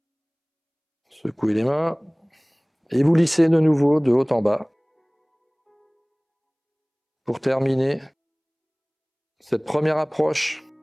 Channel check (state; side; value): identical; both; correlation 1.00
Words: Secouez les mains et vous lissez de nouveau de haut en bas. Pour terminer cette première approche